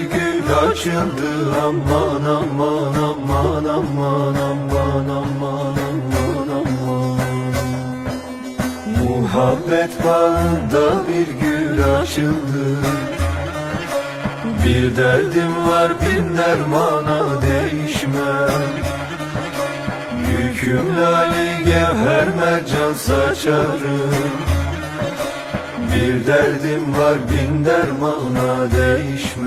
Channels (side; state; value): both; identical; correlation 1.00